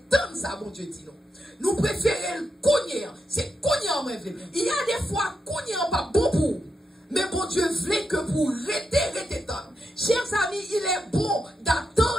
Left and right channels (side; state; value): both; normal; correlation 0.85